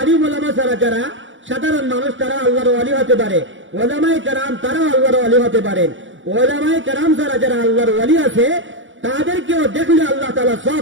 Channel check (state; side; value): late; left; 0.56 ms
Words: আলিম উলামা ছাড়া যারা সাধারণ মানুষ, তারা আল্লাহর ওলি হতে পারে। উলামায়ে কেরাম তারাও আল্লাহর ওলি হতে পারেন। উলামায়ে কেরাম ছাড়া যারা আল্লাহর ওলি আছে, তাদেরকেও দেখলে আল্লাহ তাআলা